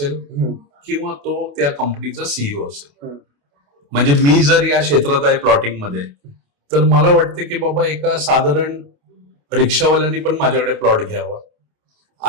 किंवा तो त्या कंपनीचा CEO असेल. म्हणजे मी जर या क्षेत्रात आहे प्लॉटिंग मध्ये तर मला वाटते की बाबा एका साधारण रिक्षावाल्यांनी पण माझ्याकडे प्लॉट घ्यावा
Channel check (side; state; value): left; late; 28 ms